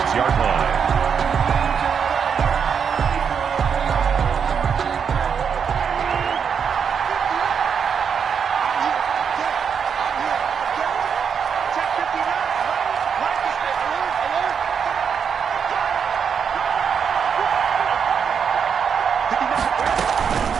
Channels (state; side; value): quieter; left; 6.9 dB